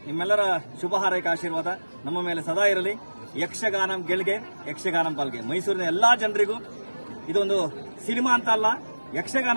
ನಿಮ್ಮೆಲ್ಲರ ಶುಭ ಹಾರೈಕೆ ಆಶೀರ್ವಾದ ನಮ್ಮ ಮೇಲೆ ಸದಾ ಇರಲಿ. ಯಕ್ಷಗಾನಂ ಗೆಲ್ಗೆ, ಯಕ್ಷಗಾನಂ ಪಾಲ್ಗೆ. ಮೈಸೂರಿನ ಎಲ್ಲಾ ಜನರಿಗೂ ಇದೊಂದು ಸಿನಿಮಾ ಅಂತ ಅಲ್ಲ,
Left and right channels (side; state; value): both; inverted; correlation -1.00